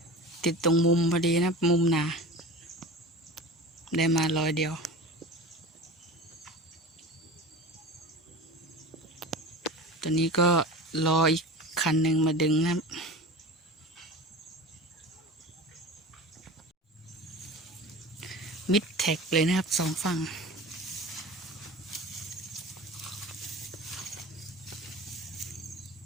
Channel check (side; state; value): both; normal; correlation 0.33